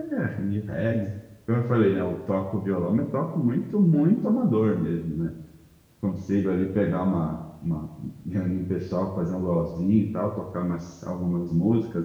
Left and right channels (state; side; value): identical; both; correlation 1.00